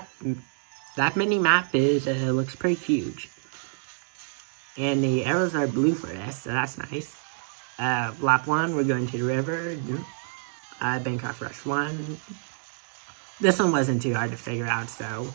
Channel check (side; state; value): left; silent; digital silence